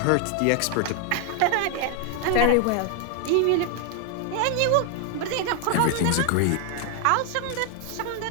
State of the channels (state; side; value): different; both; correlation 0.00